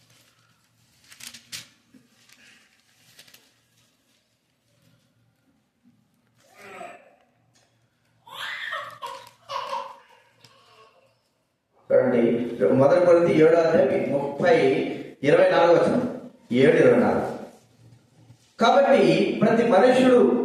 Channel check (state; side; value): identical; both; correlation 1.00